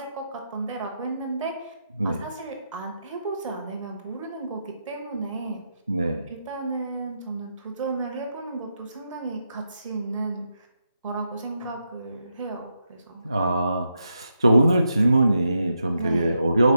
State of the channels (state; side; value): inverted; both; correlation -0.84